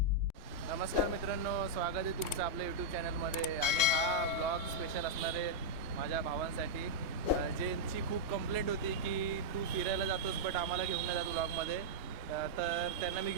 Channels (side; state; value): left; late; 2.8 ms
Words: नमस्कार मित्रांनो, स्वागत आहे तुमचं आपल्या यूट्यूब चॅनलमध्ये. आणि हा ब्लॉग स्पेशल असणार आहे माझ्या भावांसाठी, ज्यांची खूप कंप्लेंट होती की तू फिरायला जातोस बट आम्हाला घेऊन नाही जातो ब्लॉगमध्ये. तर त्यांना मी